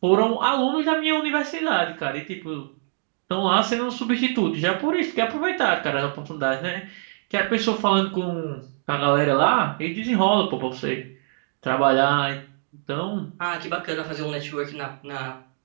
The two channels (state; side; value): silent; left; 63 dB below the other